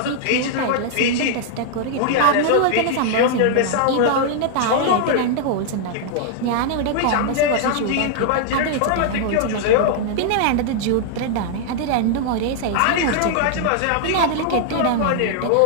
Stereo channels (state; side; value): different; both; correlation -0.01